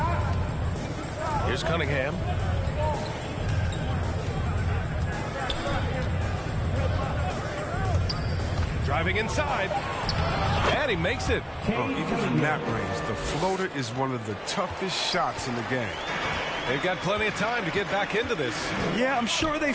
Here's Cunningham. Driving inside. And he makes it. Even from that range, the floater is one of the toughest shots in the game. They've got plenty of time to get back into this. Yeah, I'm sure they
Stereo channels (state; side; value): identical; both; correlation 1.00